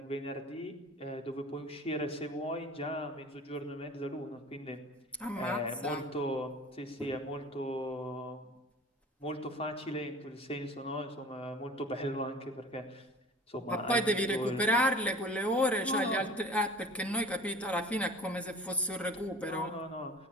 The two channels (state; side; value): normal; both; correlation 0.42